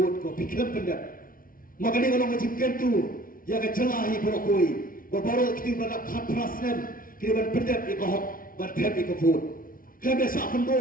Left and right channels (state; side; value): late; right; 0.41 ms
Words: kafikiran pendak. Maka dia kalau kaji kentu, ya kecelahi berokoi. Baru kita berada katrasnem, kita berpendap di kahok, bertep di kafur. Kita biasa